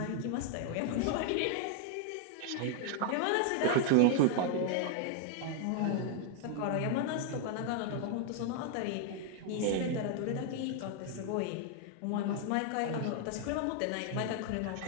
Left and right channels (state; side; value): different; both; correlation 0.00